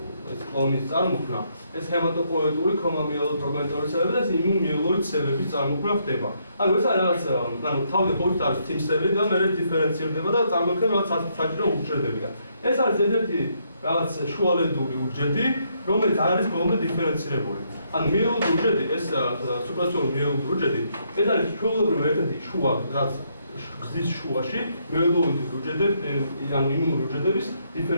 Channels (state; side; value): inverted; both; correlation -0.74